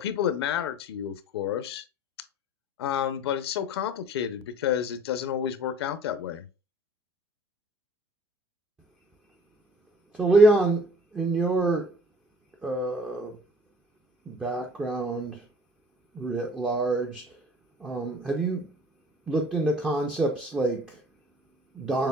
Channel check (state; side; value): normal; both; correlation 0.51